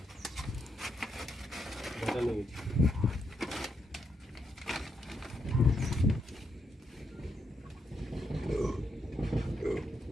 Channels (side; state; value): both; normal; correlation 0.80